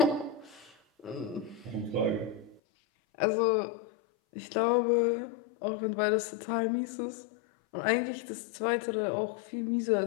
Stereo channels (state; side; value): drops out; right; at 2.6 s